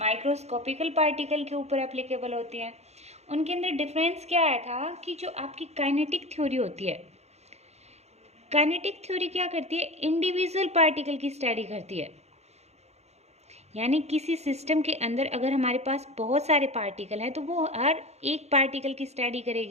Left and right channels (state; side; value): late; left; 0.31 ms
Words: पार्टिकल के ऊपर एप्लीकेबल होती हैं। उनके अंदर डिफरेंस क्या आया था कि जो आपकी काइनेटिक थ्योरी होती है, काइनेटिक थ्योरी क्या करती है? इंडिविजुअल पार्टिकल की स्टडी करती है। यानी किसी सिस्टम के अंदर अगर हमारे पास बहुत सारे पार्टिकल हैं तो वो हर एक पार्टिकल की स्टडी